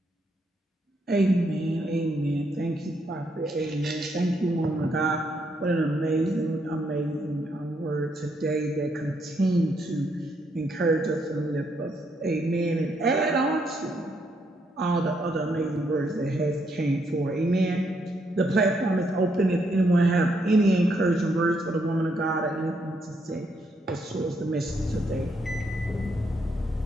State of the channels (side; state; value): both; normal; correlation 0.75